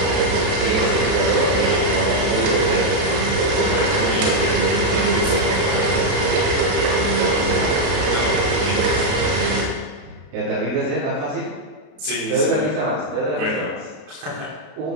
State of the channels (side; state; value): left; late; 33 ms